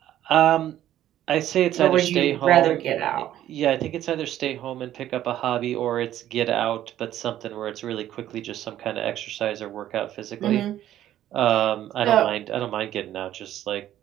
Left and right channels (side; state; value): left; quieter; 12.3 dB